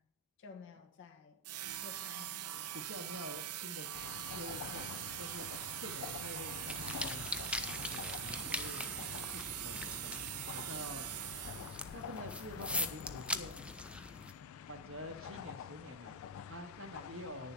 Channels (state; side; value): normal; both; correlation 0.00